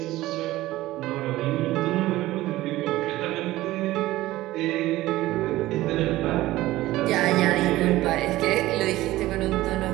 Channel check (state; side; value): quieter; left; 16.8 dB